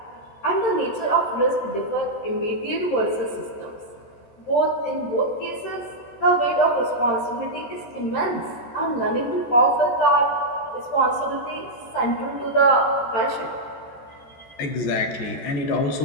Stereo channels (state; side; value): late; right; 14 ms